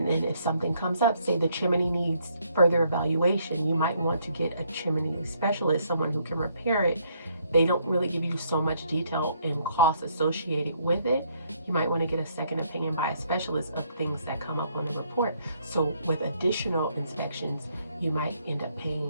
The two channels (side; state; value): both; inverted; correlation -0.69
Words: then if something comes up, say the chimney needs further evaluation, you might want to get a chimney specialist, someone who can repair it. They don't really give you so much detail and cost associated with it. You might want to get a second opinion by a specialist of things that come up on the report. So with additional inspections, you might end up